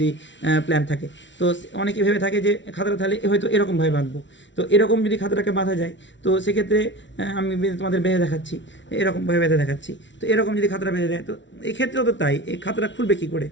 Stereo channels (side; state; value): right; late; 0.54 ms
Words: প্ল্যান থাকে। তো অনেকে ভেবে থাকে যে খাতাটা তাহলে হয়তো এরকমভাবে বাঁধবো। তো এরকম যদি খাতাটাকে বাঁধা যায় তো সেক্ষেত্রে আমি তোমাদের বেঁধে দেখাচ্ছি, এরকমভাবে বেঁধে দেখাচ্ছি। তো এরকম যদি খাতাটা বেঁধে দেয় তো এক্ষেত্রেও তো তাই, এই খাতাটা খুলবে কী করে,